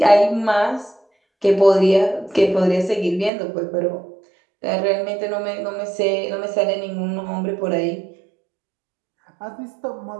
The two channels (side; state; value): left; drops out; at 3.3 s